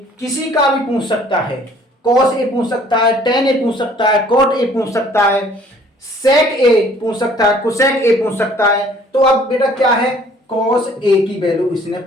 किसी का भी पूछ सकता है, cos A पूछ सकता है, tan A पूछ सकता है, cot A पूछ सकता है, sec A पूछ सकता है, cosec A पूछ सकता है। तो अब बेटा क्या है, cos A की वैल्यू इसने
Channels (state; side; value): normal; both; correlation 0.56